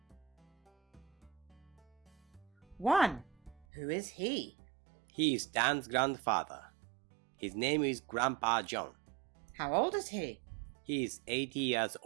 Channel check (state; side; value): drops out; left; at 3.7 s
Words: 1. Who is he? He is Dan's grandfather. His name is Grandpa John. How old is he? He is 80 years